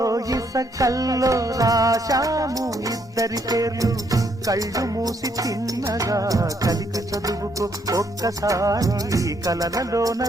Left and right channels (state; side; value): normal; both; correlation 0.72